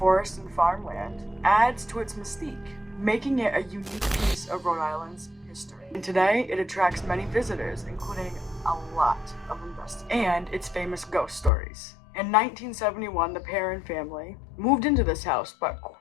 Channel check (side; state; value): right; drops out; at 11.5 s